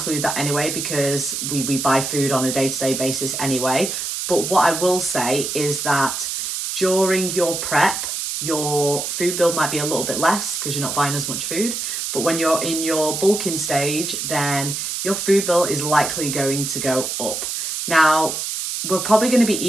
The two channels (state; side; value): noise; right; hiss, 3 dB below the sound